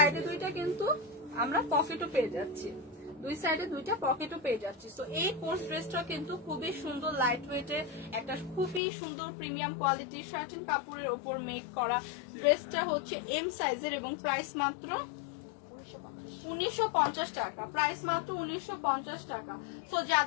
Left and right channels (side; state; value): right; drops out; at 8.8 s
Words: দুইটা কিন্তু আমরা পকেটও পেয়ে যাচ্ছি, দুই সাইডে দুইটা পকেটও পেয়ে যাচ্ছি। তো এই কোর্স ড্রেসটা কিন্তু খুবই সুন্দর লাইট ওয়েটের একটা খুবই সুন্দর প্রিমিয়াম কোয়ালিটির শার্টিন কাপড়ের ওপর মেক করা। ড্রেসটা হচ্ছে এম সাইজের, এবং প্রাইস মাত্র 1950 টাকা। প্রাইস মাত্র 1950 টাকা। সো